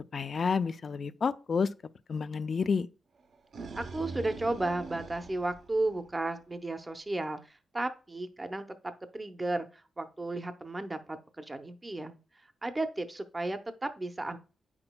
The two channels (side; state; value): both; normal; correlation 0.90